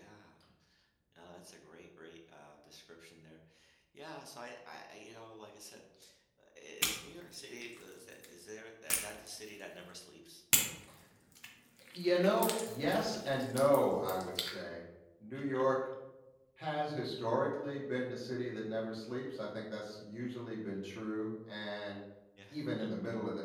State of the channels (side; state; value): both; identical; correlation 1.00